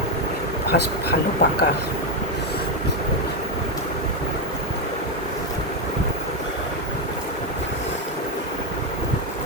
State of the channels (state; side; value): normal; both; correlation 0.05